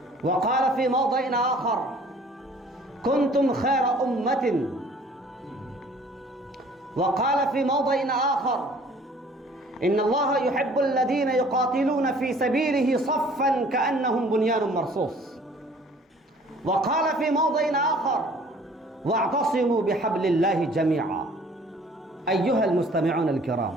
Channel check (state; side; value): normal; both; correlation 0.53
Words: وقال في موضع آخر: كنتم خير أمة. وقال في موضع آخر: إن الله يحب الذين يقاتلون في سبيله صفا كأنهم بنيان مرصوص. وقال في موضع آخر: واعتصموا بحبل الله جميعا. أيها المستمعون الكرام،